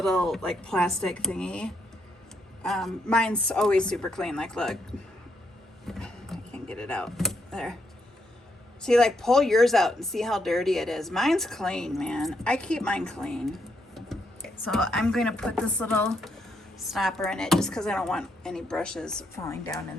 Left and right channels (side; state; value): both; normal; correlation 0.77